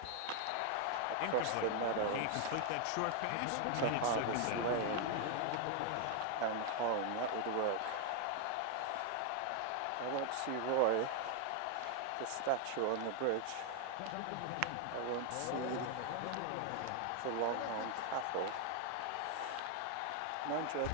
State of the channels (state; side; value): different; both; correlation 0.00